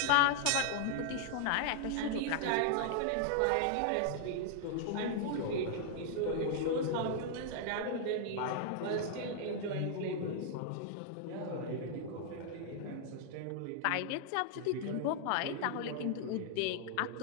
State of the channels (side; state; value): both; different; correlation 0.00